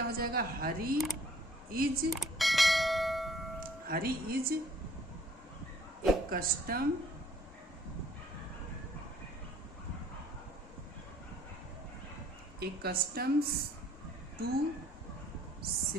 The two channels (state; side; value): normal; both; correlation 0.58